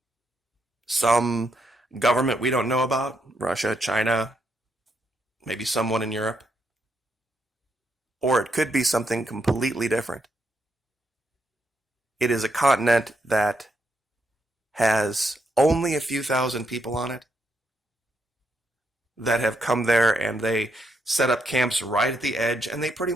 some government we don't know about, Russia, China, maybe someone in Europe, or it could be something completely different. It is a continent that has only a few thousand people on it that have come there, and they set up camps right at the edge, and they pretty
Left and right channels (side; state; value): both; normal; correlation 0.79